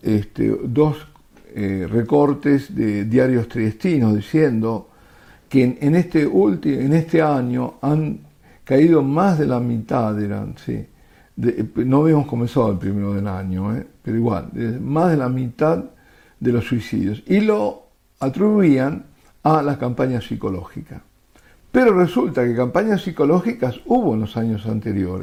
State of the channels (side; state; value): both; identical; correlation 1.00